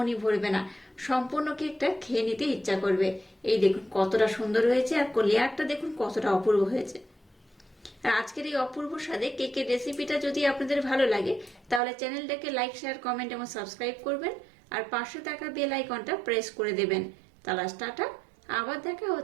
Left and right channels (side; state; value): left; drops out; at 11.8 s